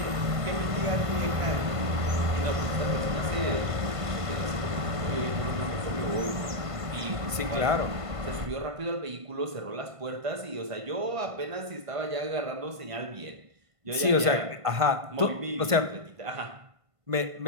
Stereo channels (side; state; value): left; late; 1.5 ms